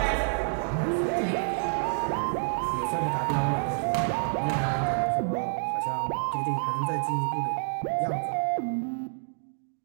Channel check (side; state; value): left; silent; digital silence